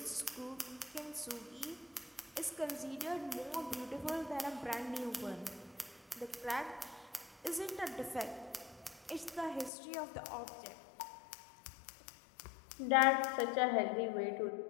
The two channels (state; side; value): drops out; right; at 9.7 s